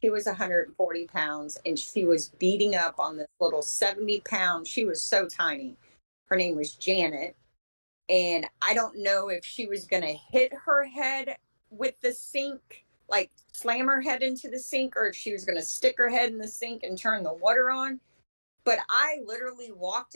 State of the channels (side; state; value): both; inverted; correlation -1.00